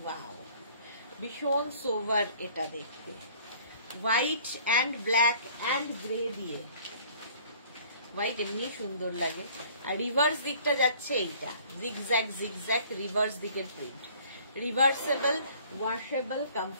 ওয়াও ভীষণ সোভার এটা দেখতে, white and black and grey দিয়ে, হোয়াইট এমনি সুন্দর লাগে। আর রিভার্স দিকটা যাচ্ছে এইটা, জিগজ্যাগ জিগজ্যাগ রিভার্স দিকের প্রিন্ট। রিভার্সেবল ওয়াশেবল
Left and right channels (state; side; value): inverted; both; correlation -0.54